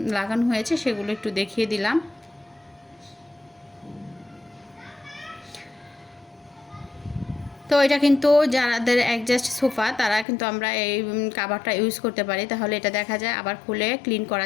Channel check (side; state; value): right; drops out; at 10.2 s